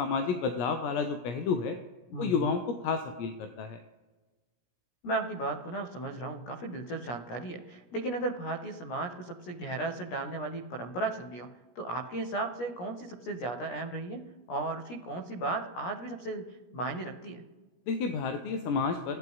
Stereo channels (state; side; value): late; right; 17 ms